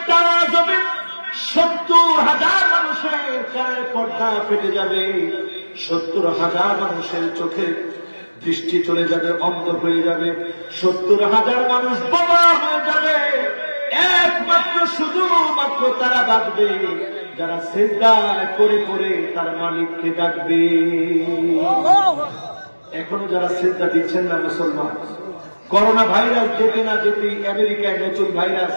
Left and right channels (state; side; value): inverted; both; correlation -1.00